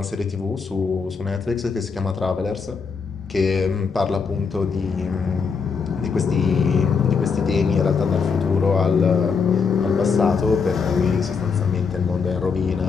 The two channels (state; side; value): quieter; right; 5.4 dB